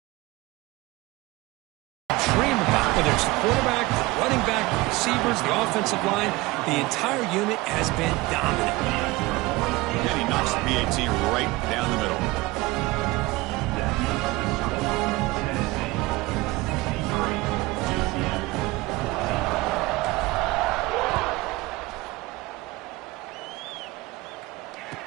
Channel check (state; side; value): quieter; left; 20.9 dB